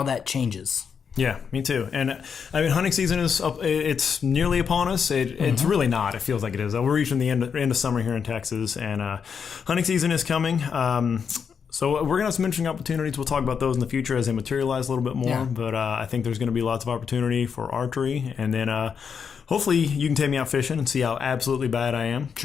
that changes. Yeah, me too. And hunting season it's nearly upon us. It's really not. It feels like it is. We're reaching the end of summer here in Texas, and hunting season is coming. So we're going to have some interesting opportunities. We'll talk about those in the future as they materialize a little bit more. Yeah. But I think there's going to be lots of opportunity for archery. And then hopefully you can take me out fishing and see how absolutely bad I am with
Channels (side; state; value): right; quieter; 6.6 dB